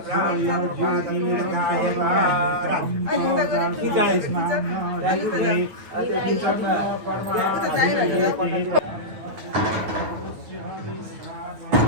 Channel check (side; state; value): left; late; 9.0 ms